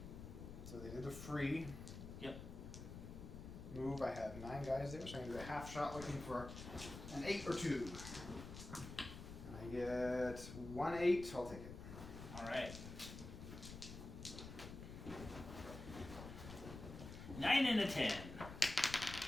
So they did a free. Yep. Move, I have 9 guys there, so I'm going to do a half shot looking for an 8 or 2. I get 1 8, I'll take it. Alright. 9 and a 10.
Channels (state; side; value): noise; left; rumble, 10 dB below the sound